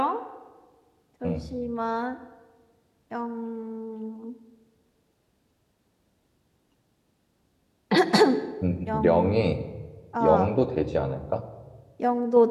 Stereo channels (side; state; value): both; identical; correlation 1.00